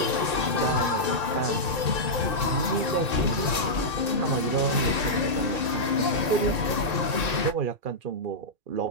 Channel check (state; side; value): late; left; 1.8 ms